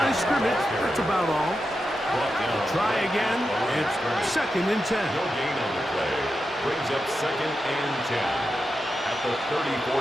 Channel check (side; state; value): both; normal; correlation 0.89